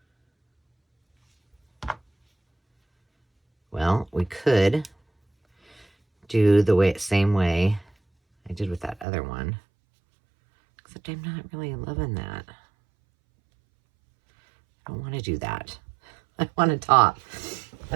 Well, we could do the same way I did with that other one. Except I'm not really loving that. I don't want to do that. I want a top.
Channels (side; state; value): left; drops out; at 9.1 s